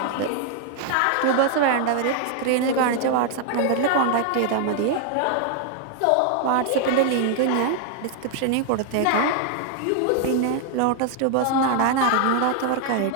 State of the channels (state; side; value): different; both; correlation 0.00